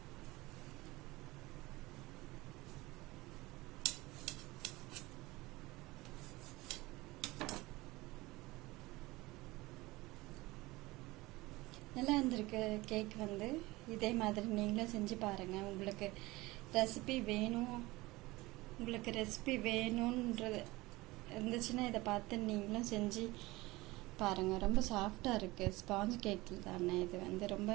நல்லா இருந்திருக்கு கேக் வந்து. இதே மாதிரி நீங்களும் செஞ்சு பாருங்கள். உங்களுக்கு ரெசிபி வேணுன்றது இருந்துச்சுன்னா இதை பார்த்து நீங்களும் செஞ்சு பாருங்கள். ரொம்ப சாஃப்டாக இருக்குது. ஸ்பாஞ்ச் கேக் தானே இது வந்து ரொம்ப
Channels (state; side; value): quieter; left; 20.7 dB